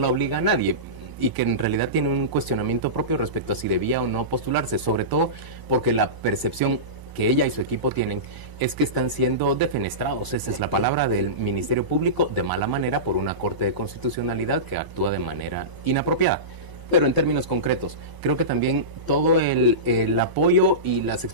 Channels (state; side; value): late; left; 1.0 ms